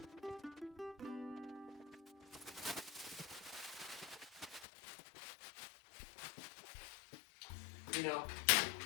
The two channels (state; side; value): drops out; right; at 4.7 s